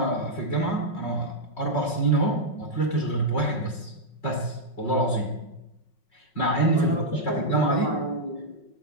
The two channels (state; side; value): late; right; 5.4 ms